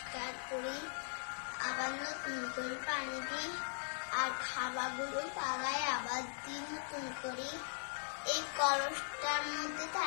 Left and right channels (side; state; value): right; silent; digital silence